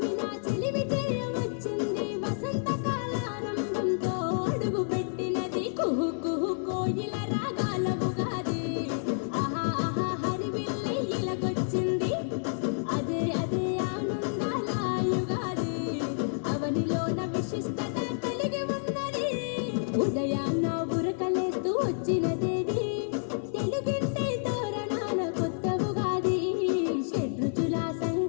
నా చెలిమి చేయవచ్చింది వసంత కాలారంభంతో అడుగు పెట్టినది కుహు కుహు కోయిల రాగాల ఉగాది ఆహా ఆహా హరివిల్లి ఇలకొచ్చింది అదే అదే ఆనందాల యుగాది అవనిలోన విశిష్టత కలిగి ఉన్నది ఉదయాన్న ఉరకలేస్తూ వచ్చినదేది తెలుగింటి తోరణాల కొత్త ఉగాది షడ్రుచుల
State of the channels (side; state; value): right; silent; digital silence